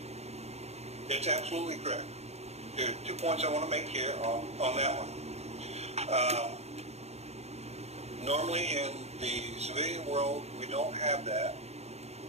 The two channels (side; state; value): left; late; 0.31 ms